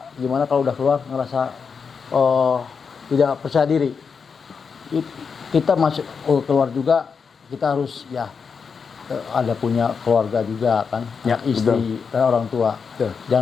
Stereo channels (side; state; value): right; quieter; 5.8 dB